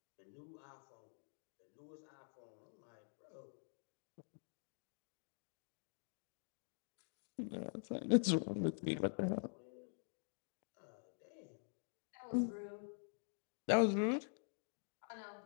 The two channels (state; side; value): silent; right; digital silence